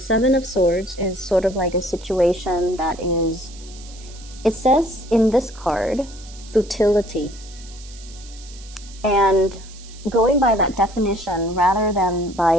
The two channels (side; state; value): right; noise; hiss, 20 dB below the sound